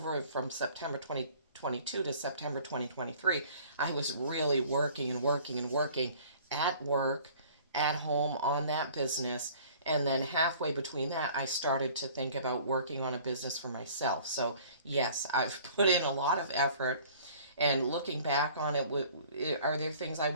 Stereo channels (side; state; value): both; inverted; correlation -0.51